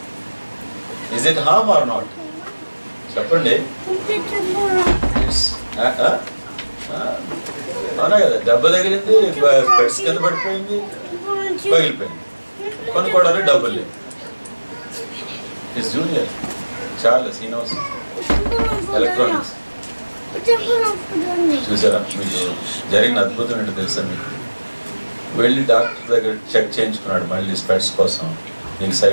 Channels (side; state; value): both; inverted; correlation -1.00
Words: Is it harm or not? చెప్పండి. అవునా కదా? దెబ్బ తగిలింది, స్పెక్ట్స్ కింద పడిపోయింది, పగిలిపోయింది. కొనుక్కోవడానికి డబ్బులు లేవు. His junior Charles, he knows electronics. చూసారా? మీకు జరిగిన అద్భుతం ఏంటో తెలుసా? మీకు వెళ్ళి డాక్టర్ దగ్గర చెక్ చేయించుకున్నాడు మళ్ళీ స్పెట్స్ కోసం. నీకు